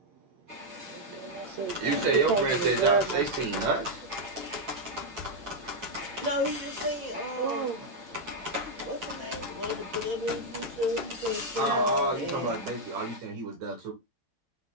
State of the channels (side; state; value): left; late; 8.8 ms